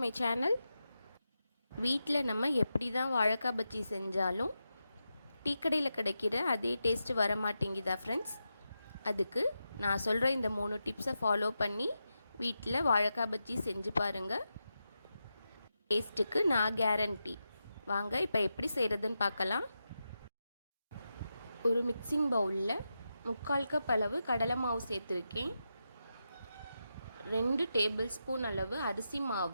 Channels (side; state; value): both; inverted; correlation -0.89